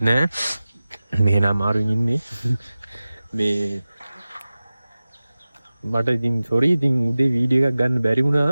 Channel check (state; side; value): inverted; both; correlation -0.97